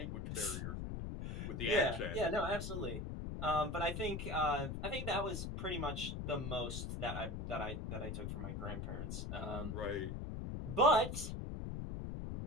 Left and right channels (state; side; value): noise; left; rumble, 4 dB below the sound